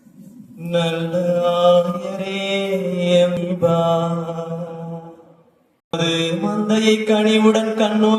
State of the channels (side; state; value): both; identical; correlation 1.00